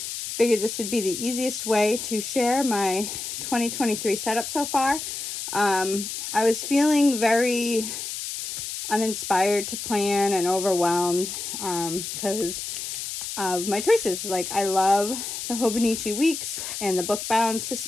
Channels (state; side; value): noise; left; hiss, 6 dB below the sound